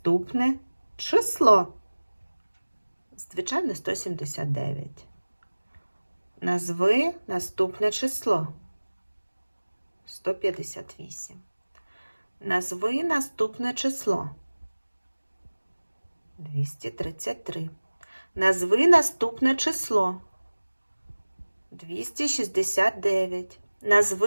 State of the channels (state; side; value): inverted; both; correlation -1.00